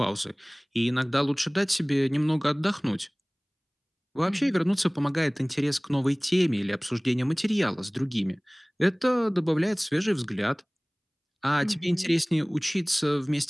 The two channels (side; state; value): both; identical; correlation 1.00